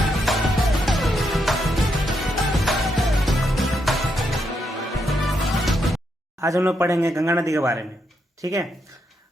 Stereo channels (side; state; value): both; normal; correlation 0.80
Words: आज हम लोग पढ़ेंगे गंगा नदी के बारे में। ठीक है।